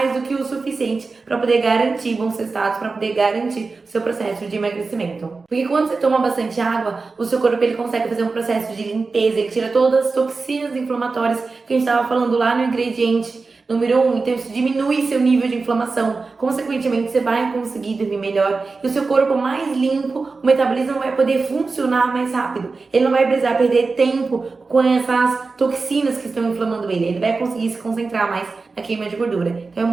do que o suficiente para poder garantir bons resultados, para poder garantir o seu processo de emagrecimento. Porque quando você toma bastante água, o seu corpo ele consegue fazer um processo de limpeza, ele tira todas as toxinas inflamatórias que a gente estava falando lá no ingrediente número 1, então isso diminui seu nível de inflamação, consequentemente você vai conseguir dormir melhor e o seu corpo mais limpo, o metabolismo vai poder funcionar mais rápido, ele não vai precisar perder tempo com essas toxinas que estão inflamando ele vai conseguir se concentrar mais na queima de gordura. Então é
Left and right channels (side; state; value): left; quieter; 4.1 dB